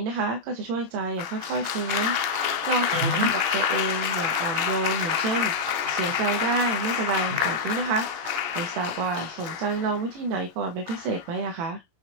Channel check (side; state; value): left; late; 18 ms